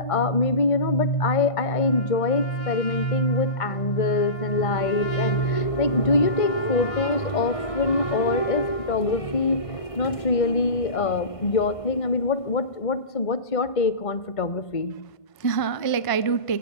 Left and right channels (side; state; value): right; late; 1.5 ms